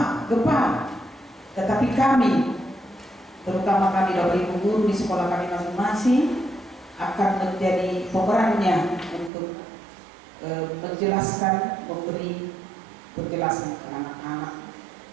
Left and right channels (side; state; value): left; drops out; at 9.3 s